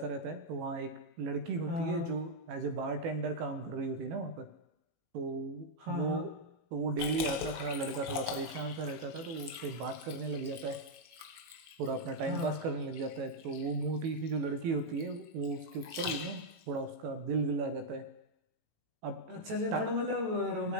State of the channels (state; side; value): late; left; 18 ms